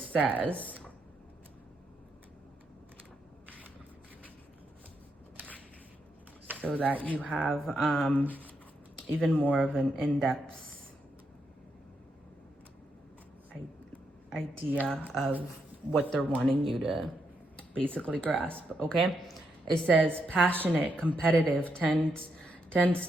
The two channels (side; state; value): both; normal; correlation 0.80